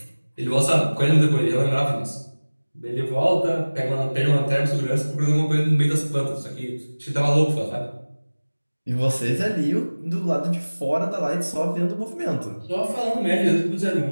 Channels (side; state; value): both; inverted; correlation -1.00